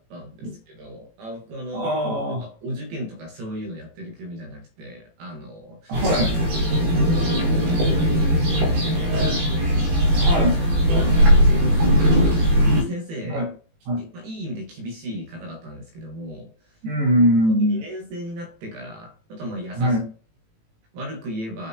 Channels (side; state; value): left; late; 18 ms